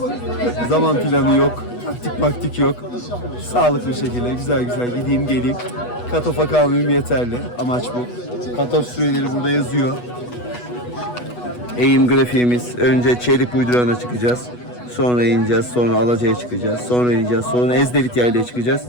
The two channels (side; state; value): right; late; 8.2 ms